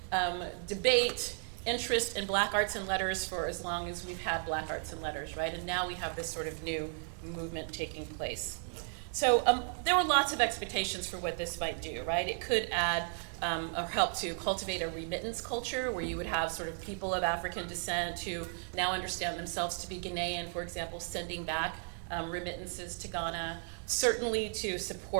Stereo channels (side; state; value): left; silent; 55 dB below the other